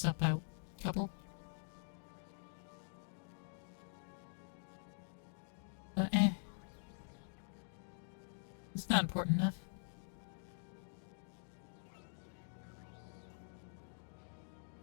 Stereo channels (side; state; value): right; silent; digital silence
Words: up a couple. But it's not important enough.